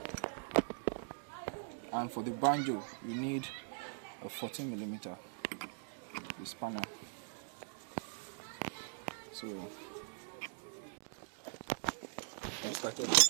and for the banjo you need a 14mm, the spanner. So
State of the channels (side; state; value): left; silent; digital silence